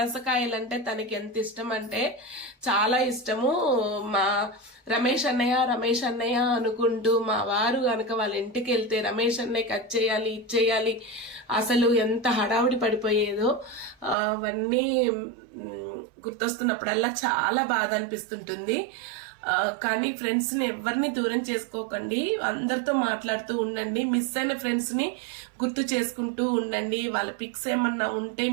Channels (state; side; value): drops out; left; at 14.2 s